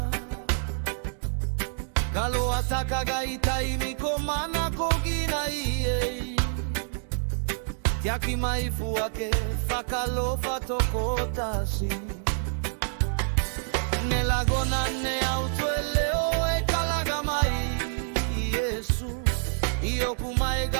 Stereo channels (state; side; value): silent; left; digital silence